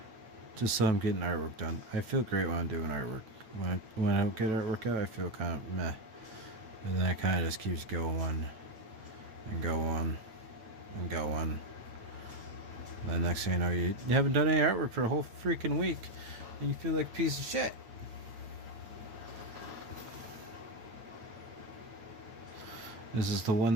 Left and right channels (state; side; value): late; left; 8.8 ms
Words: Just so I'm getting artwork done. I feel great when I'm doing artwork. When I don't get artwork out, I feel kind of meh. And then it kind of just keeps going and going and going. Then next thing you know, you haven't done any artwork for a whole freaking week. And you feel like a piece of shit. This is the